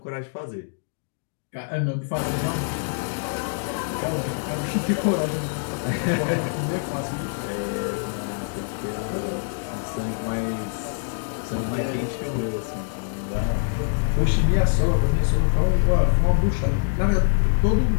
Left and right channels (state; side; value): silent; right; digital silence